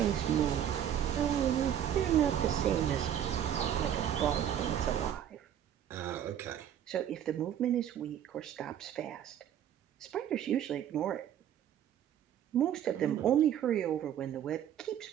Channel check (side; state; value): left; quieter; 10.1 dB